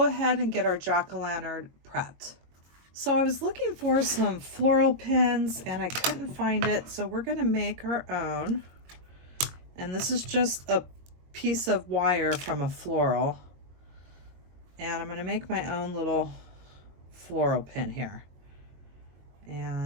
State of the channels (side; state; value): left; late; 22 ms